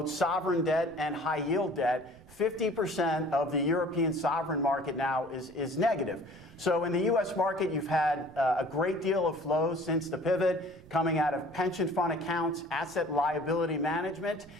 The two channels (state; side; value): noise; right; rumble, 24 dB below the sound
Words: sovereign debt and high yield debt. 50% of the European sovereign market now is negative. So in the U.S. market, you've had a great deal of flows since the pivot coming out of pension fund accounts, asset liability management.